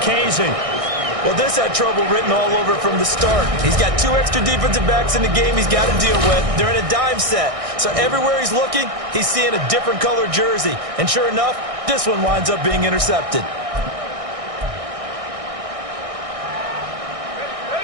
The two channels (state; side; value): late; left; 1.6 ms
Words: Casey. Well, this had trouble written all over from the start. He's got 2 extra defensive backs in the game he's got to deal with. They're in a dime set. So everywhere he's looking, he's seeing a different color jersey. And sure enough, this one winds up being intercepted.